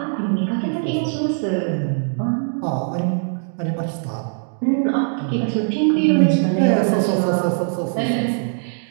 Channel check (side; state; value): left; silent; 58 dB below the other